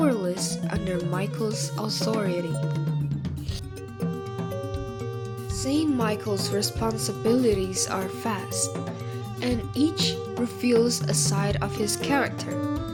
under Michael's authority. Saint Michael's responsibilities are vast, and each reveals a side of his character.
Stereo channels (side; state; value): both; identical; correlation 1.00